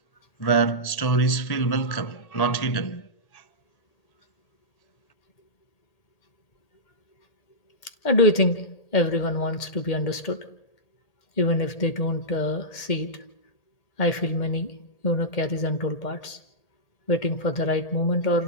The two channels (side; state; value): right; late; 1.8 ms